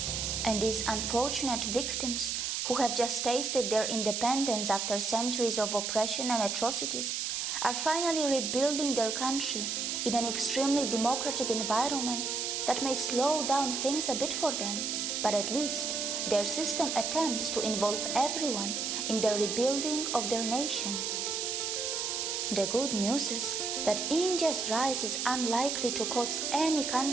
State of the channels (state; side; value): noise; right; hiss, 1 dB below the sound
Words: And these unfortunate victims who have just tasted their independence after centuries of oppression and atrocities are finally rebuilding their country in an extremely democratic environment that may slow down things a bit for them, but at least their system attempts to involve everyone in the rebuilding of their nation. The good news is that India's rise is unlikely to cause any